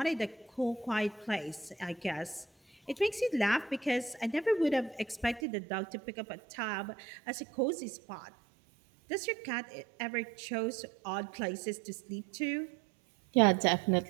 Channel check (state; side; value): drops out; left; at 5.5 s